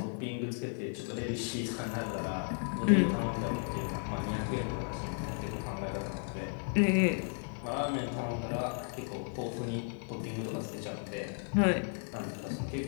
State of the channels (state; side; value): silent; right; 55 dB below the other